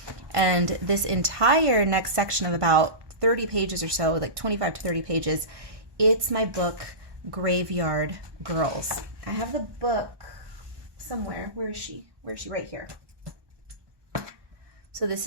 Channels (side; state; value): left; late; 1.2 ms